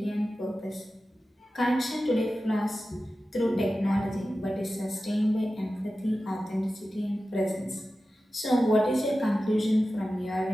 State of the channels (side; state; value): both; normal; correlation 0.94